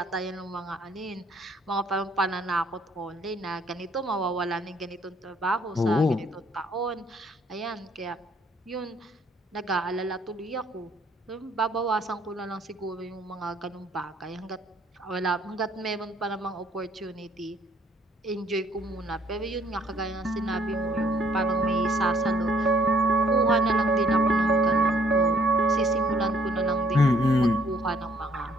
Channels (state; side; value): normal; both; correlation 0.63